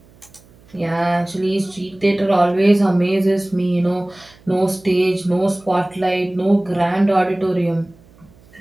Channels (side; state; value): right; noise; hum, 28 dB below the sound